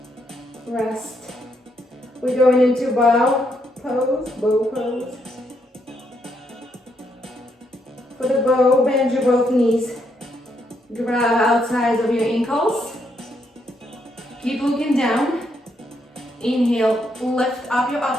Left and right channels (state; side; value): normal; both; correlation 0.76